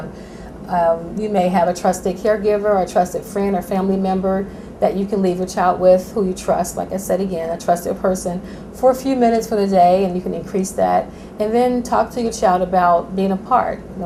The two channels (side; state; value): both; identical; correlation 1.00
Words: You may have a trusted caregiver or a trusted friend or family member that you can leave your child with, who you trust. Like I said again, a trusted person, for a few minutes for the day, and you can increase that. And then talk to your child about being apart.